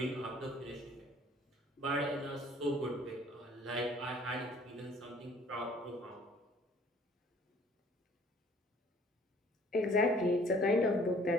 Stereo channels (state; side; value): normal; both; correlation 0.56